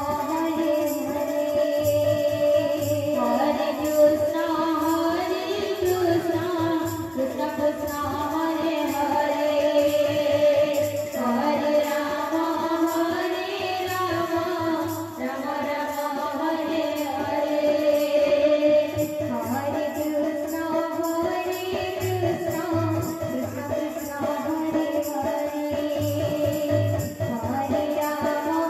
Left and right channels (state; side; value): identical; both; correlation 1.00